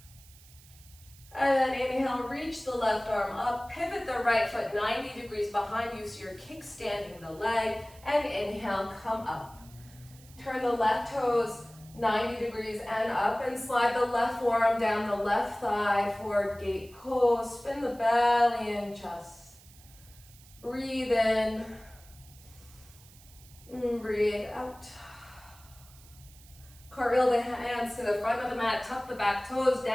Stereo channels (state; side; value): noise; right; hiss, 23 dB below the sound